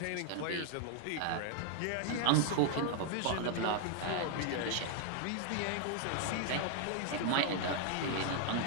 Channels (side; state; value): both; different; correlation 0.00